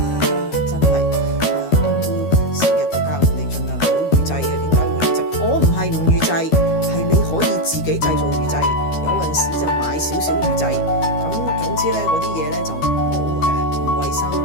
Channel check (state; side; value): late; right; 13 ms